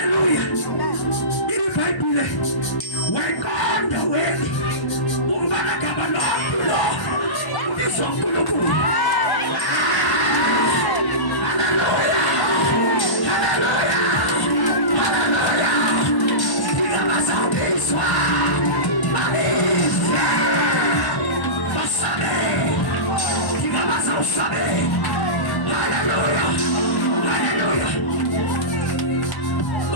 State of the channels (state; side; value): late; right; 1.1 ms